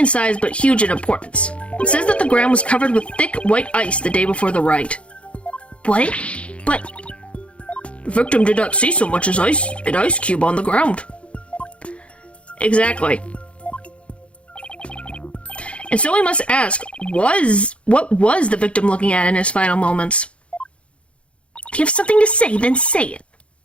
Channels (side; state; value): right; late; 0.061 ms